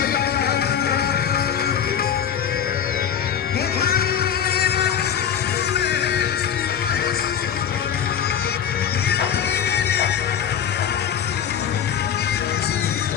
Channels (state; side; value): quieter; right; 8.8 dB